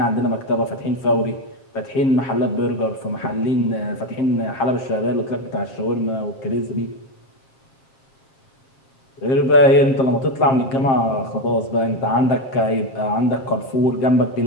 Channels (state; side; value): late; right; 7.5 ms